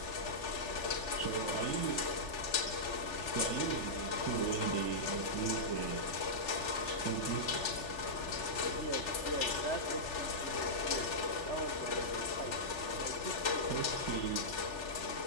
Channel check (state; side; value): late; right; 3.3 ms